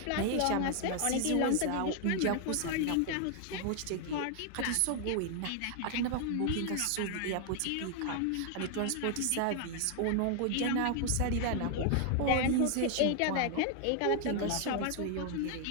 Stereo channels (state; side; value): different; both; correlation 0.00